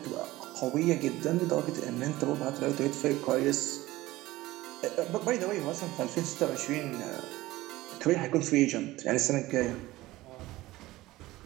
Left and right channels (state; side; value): quieter; left; 17.8 dB